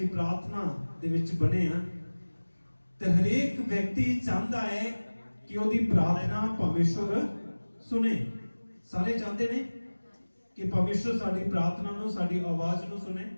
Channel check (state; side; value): inverted; both; correlation -1.00